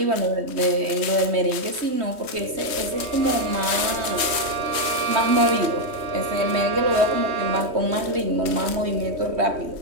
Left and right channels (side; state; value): left; late; 3.2 ms